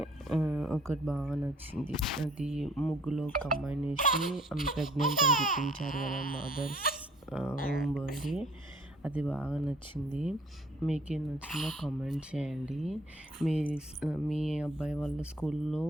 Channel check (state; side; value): normal; both; correlation 0.57